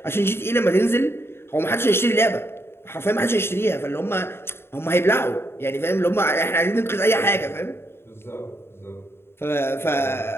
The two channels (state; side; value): late; right; 0.11 ms